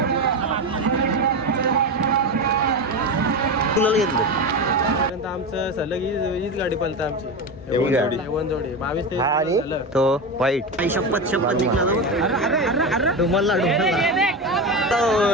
कुणाला घेतलं आमचं सलग हीच गाडी पळतं आमची. वनजोडी 22-23 झालं. तो वाईट शपथ जिंकला तुम्हाला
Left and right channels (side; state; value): both; normal; correlation 0.19